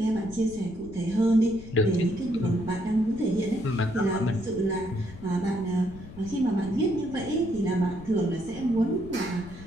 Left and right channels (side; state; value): left; noise; rumble, 16 dB below the sound